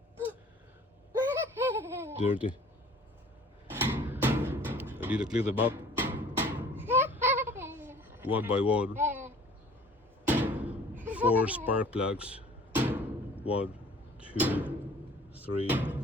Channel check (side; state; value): both; normal; correlation 0.49